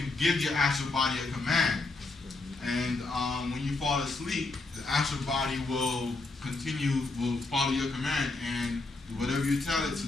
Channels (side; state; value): right; quieter; 3.4 dB